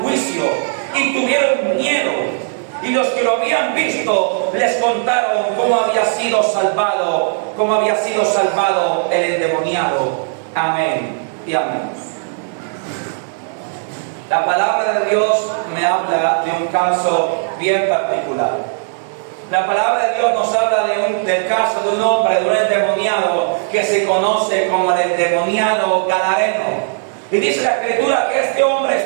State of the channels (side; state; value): left; silent; digital silence